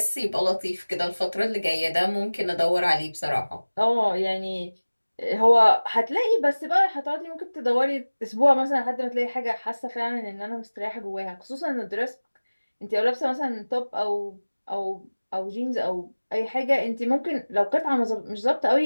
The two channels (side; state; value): both; inverted; correlation -1.00